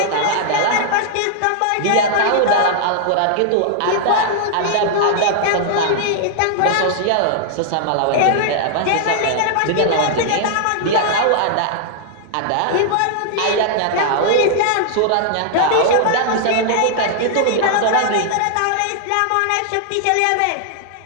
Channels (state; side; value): different; both; correlation -0.01